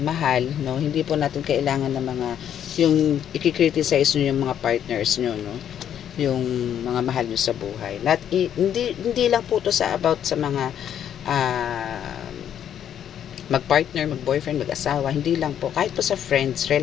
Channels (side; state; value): right; quieter; 9.6 dB